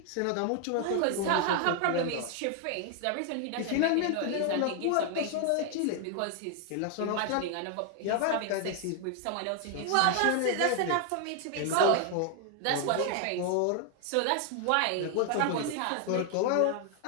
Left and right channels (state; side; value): different; both; correlation 0.00